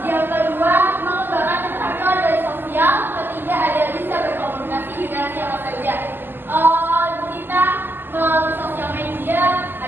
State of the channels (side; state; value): left; late; 0.095 ms